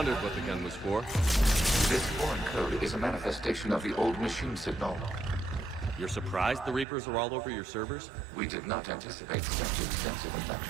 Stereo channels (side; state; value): left; drops out; at 6.9 s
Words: what the gun was for. This foreign code is a manifestation of the old machine signal. You're surprised the Reapers are all over your servers? We did not anticipate such extensive